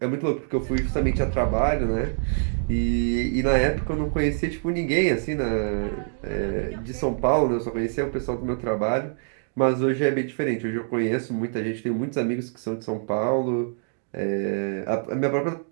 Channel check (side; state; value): left; silent; digital silence